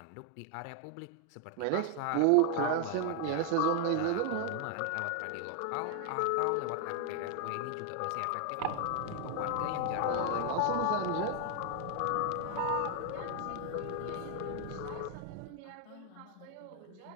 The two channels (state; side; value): different; both; correlation 0.00